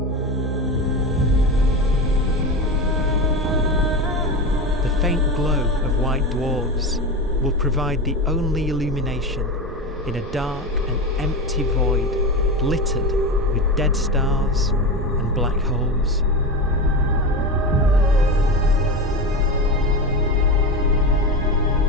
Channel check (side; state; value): both; normal; correlation 0.22